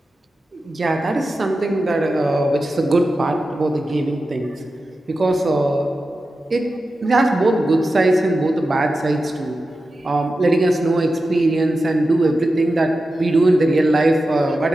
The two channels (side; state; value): both; normal; correlation 0.92